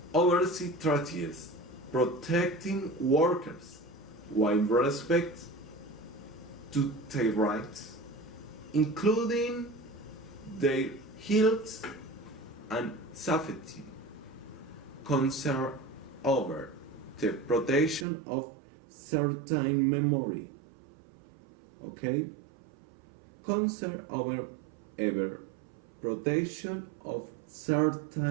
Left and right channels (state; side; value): drops out; left; at 18.1 s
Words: oversee treaties protecting workers while respect to their rights, including their health and safety, concern over the protection of certain memory, okay? Concern over ever protection of